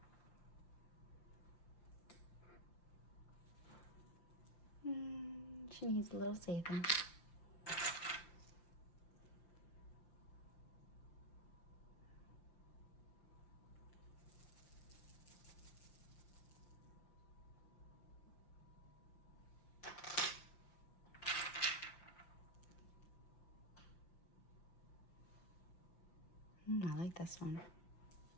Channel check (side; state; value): right; late; 5.8 ms